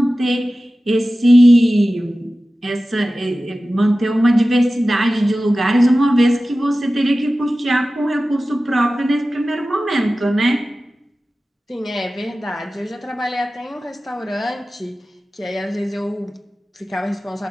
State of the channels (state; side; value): normal; both; correlation 0.95